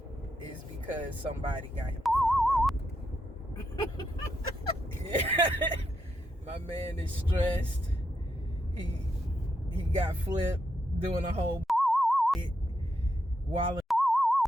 is because somebody got him yeah. My man is stressed. He got flipped doing a whole wilding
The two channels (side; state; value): both; normal; correlation 0.82